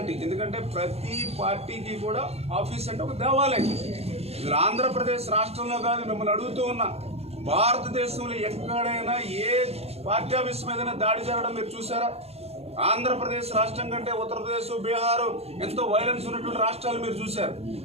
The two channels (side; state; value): left; late; 0.30 ms